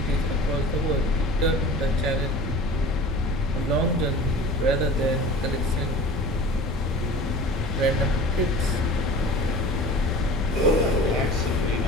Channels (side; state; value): both; normal; correlation 0.40